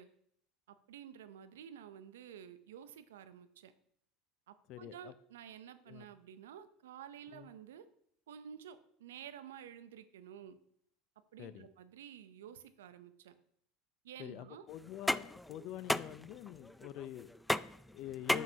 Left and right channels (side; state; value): both; normal; correlation 0.78